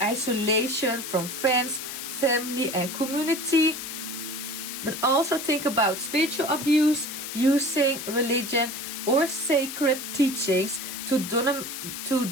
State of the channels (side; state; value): left; noise; hiss, 7 dB below the sound